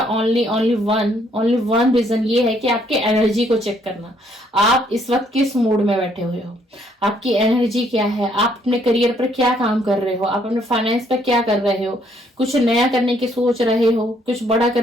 ओनली वन रीजन ये है कि आपके एनर्जी को चेक करना, आप इस वक्त किस मूड में बैठे हुए हो, आपकी एनर्जी क्या है, आप अपने करियर पर क्या काम कर रहे हो, आप अपने फाइनेंस पर क्या कर रहे हो, कुछ नया करने की सोच रहे हो, कुछ बड़ा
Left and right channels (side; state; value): both; normal; correlation 0.68